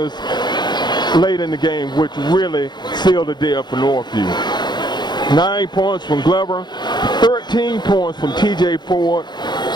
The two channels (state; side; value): late; right; 0.21 ms